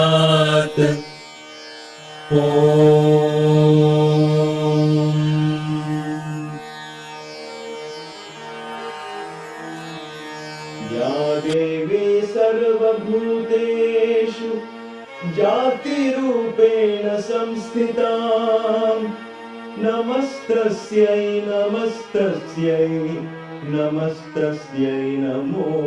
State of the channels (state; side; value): identical; both; correlation 1.00